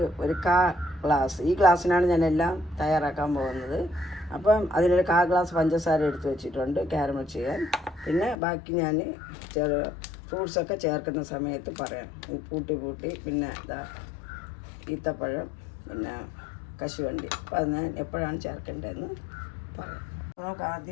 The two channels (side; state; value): right; drops out; at 8.3 s